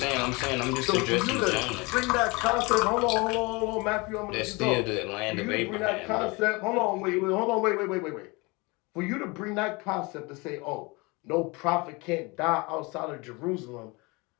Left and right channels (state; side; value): quieter; right; 26.4 dB